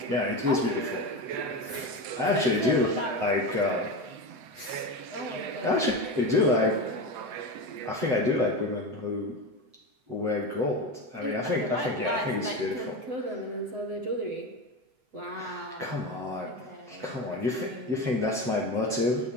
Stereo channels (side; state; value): left; late; 7.9 ms